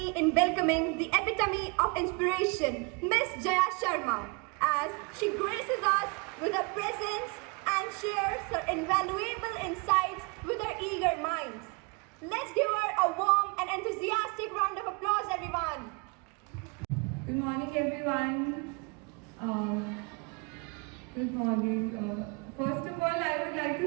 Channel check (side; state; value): left; quieter; 30.6 dB